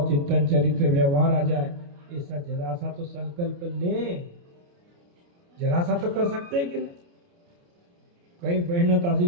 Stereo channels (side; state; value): left; late; 29 ms